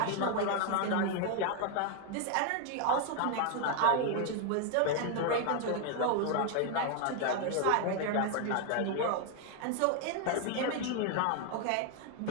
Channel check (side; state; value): both; different; correlation 0.01